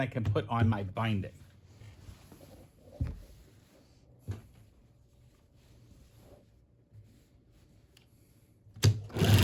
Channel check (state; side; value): identical; both; correlation 1.00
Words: I can put on my binding.